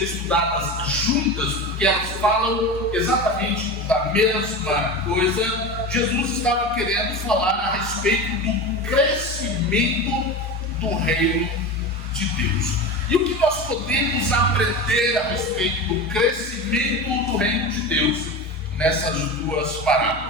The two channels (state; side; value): normal; both; correlation 0.26